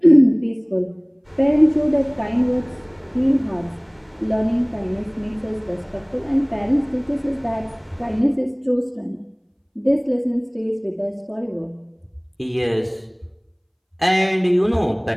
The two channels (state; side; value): identical; both; correlation 1.00